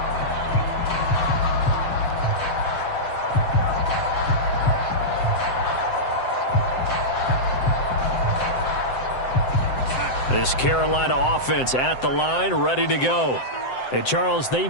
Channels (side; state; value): right; late; 7.7 ms